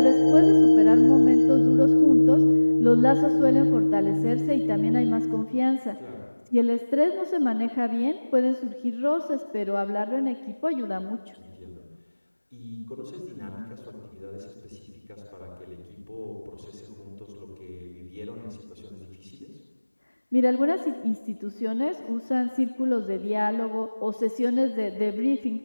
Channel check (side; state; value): both; inverted; correlation -1.00